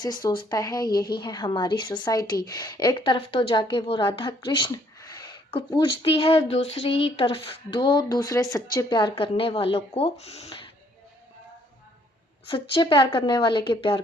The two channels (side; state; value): both; normal; correlation 0.65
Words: सोचता है, यही है हमारी सोसाइटी। एक तरफ तो जाके वो राधा कृष्ण को पूजती है, दूसरी तरफ दो दूसरे सच्चे प्यार करने वाले के प्यार